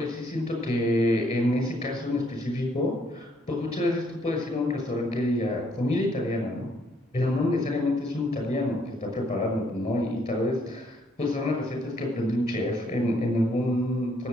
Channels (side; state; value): both; normal; correlation 0.69